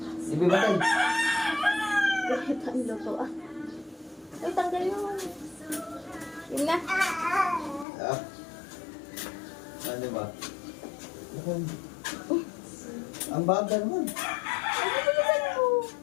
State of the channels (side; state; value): right; drops out; at 7.9 s